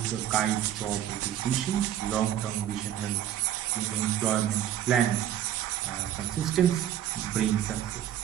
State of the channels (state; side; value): quieter; left; 11.0 dB